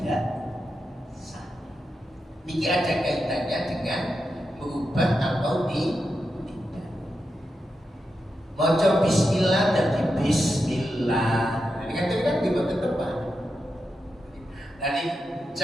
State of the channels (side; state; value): both; normal; correlation 0.87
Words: sah. Ini ada kaitannya dengan merubah atau maca bismillah dan bismillah. Ini kan di tempat. Jadi